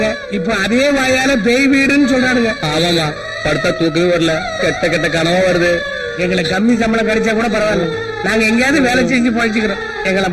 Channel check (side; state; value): both; identical; correlation 1.00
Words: இப்ப அதே வாயால பேய் வீடுன்னு சொல்றானுங்க. ஆமாமா, படுத்தா தூக்கவே வரல, கெட்ட கெட்ட கனவா வருது. எங்களுக்கு கம்மி சம்பளம் கிடைச்சா கூட பரவாயில்ல, நாங்க எங்கேயாவது வேலை செஞ்சு பழிச்சுக்கிறோம். எங்களை